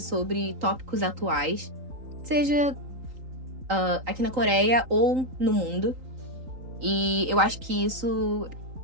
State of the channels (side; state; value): left; late; 3.8 ms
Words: tópicos atuais, seja aqui na Coreia ou no mundo. E eu acho que isso